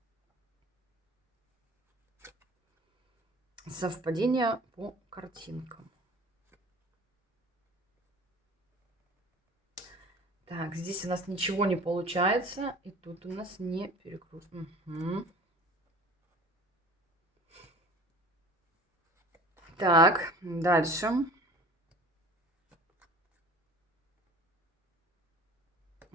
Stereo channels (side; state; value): both; normal; correlation 0.44